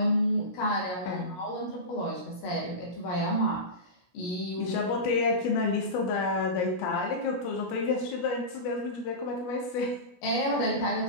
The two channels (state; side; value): late; right; 16 ms